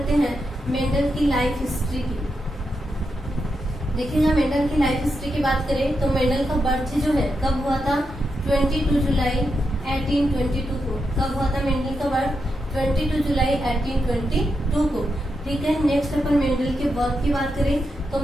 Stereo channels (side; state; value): both; normal; correlation 0.85